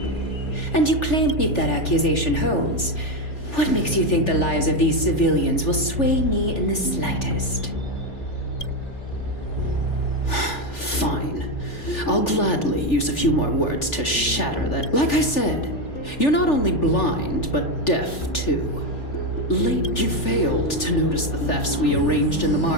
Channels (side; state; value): right; late; 3.4 ms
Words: And you claim if that accusation holds, what makes you think the lives of these civilians will sway me in the slightest? Fine. I'll gladly use a few more words to shatter that. Like I said, you're not only blind, but deaf too. Late, you failed to notice the thefts we arranged in the